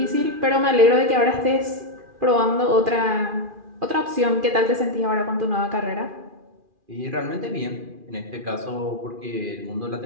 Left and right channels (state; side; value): late; left; 2.4 ms